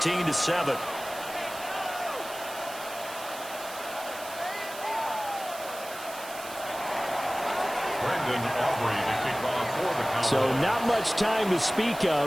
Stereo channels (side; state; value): right; noise; hiss, 13 dB below the sound